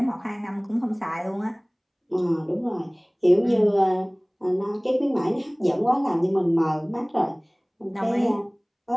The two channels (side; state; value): both; identical; correlation 1.00